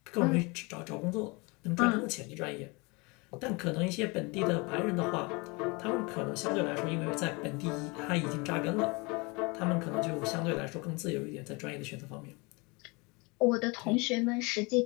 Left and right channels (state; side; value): quieter; right; 27.6 dB